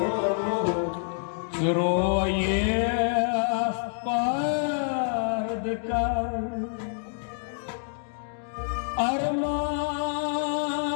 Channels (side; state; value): right; silent; digital silence